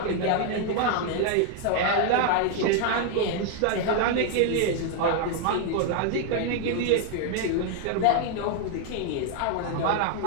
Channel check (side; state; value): both; different; correlation 0.00